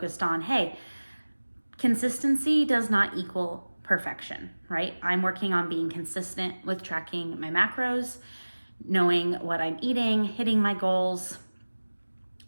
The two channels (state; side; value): inverted; both; correlation -1.00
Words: on, hey, consistency does not equal perfection, right? I'm working on being consistent with tracking my macros, knowing what I'm eating, hitting my goals,